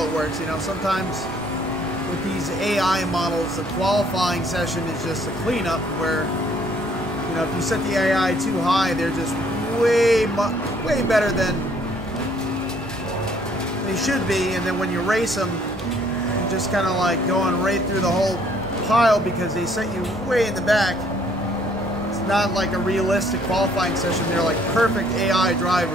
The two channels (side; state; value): both; normal; correlation 0.63